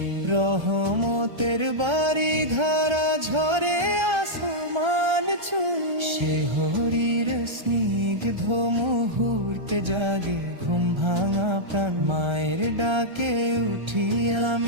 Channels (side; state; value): left; late; 1.3 ms